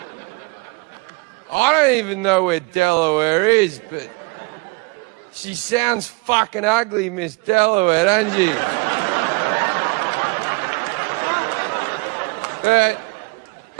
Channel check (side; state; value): left; quieter; 28.5 dB